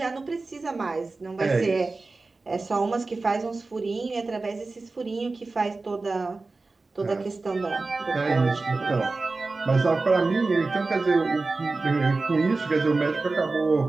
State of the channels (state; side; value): quieter; left; 3.6 dB